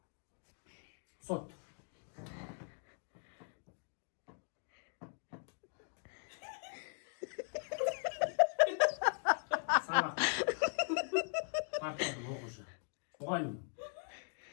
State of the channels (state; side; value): silent; right; 51 dB below the other